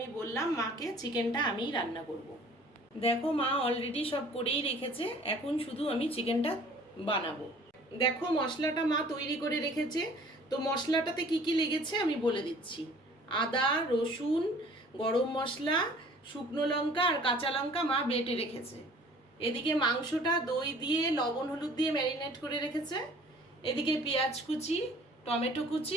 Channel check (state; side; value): normal; both; correlation 0.51